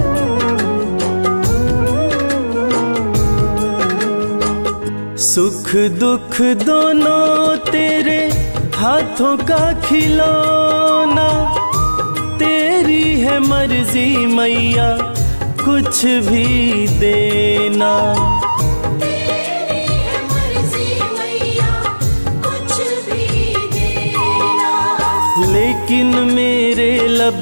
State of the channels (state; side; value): inverted; both; correlation -1.00